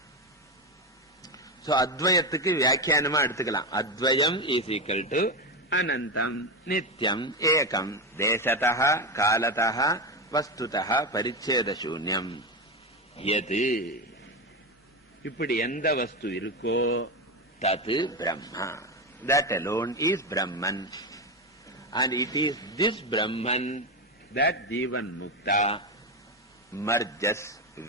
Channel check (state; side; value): normal; both; correlation 0.14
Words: So Advayathukku Vyakyanama eduthikalam. Advayam is equal to Anantam, Nityam, Ekam, Deshataha, Kalataha, Vastutaha, Paricheda Shunyam. Yati. இப்படி எந்த வஸ்து இருக்கோ தது Brahma. That alone is Brahman. And it is this Brahman that Jivan Mukta merges